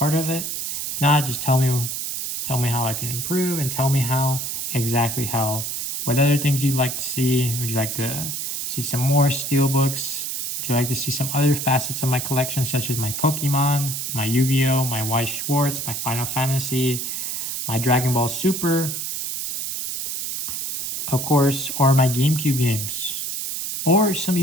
of it. If not, just tell me how I can improve, and tell me what other things you'd like to see. Would you like to see some more Steelbooks? Would you like to see some other facets of my collection, such as my Pokemon, my Yu-Gi-Oh, my Weiss Schwarz, my Final Fantasy, my Dragon Ball Super, of course, or my GameCube games, or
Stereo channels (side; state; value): right; noise; hiss, 4 dB below the sound